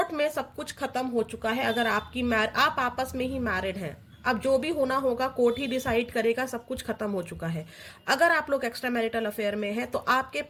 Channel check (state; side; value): identical; both; correlation 1.00